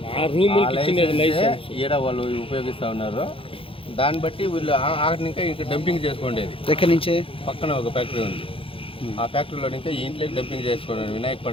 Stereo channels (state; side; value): late; right; 0.27 ms